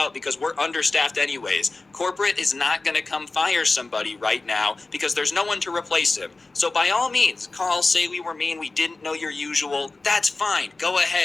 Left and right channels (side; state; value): right; quieter; 3.5 dB